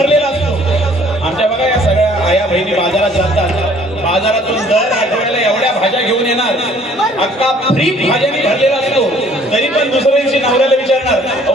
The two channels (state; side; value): normal; both; correlation 0.57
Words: असतो. आमच्या बघा या सगळ्या आया बहिणी बाजारात जातात, बाजारातून दर आठवड्याला एवढ्या भाज्या घेऊन येणार, अख्खा फ्रीज भाज्यांनी भरलेला असतो. तरी पण दुसऱ्या दिवशी नवऱ्याला विचारणार,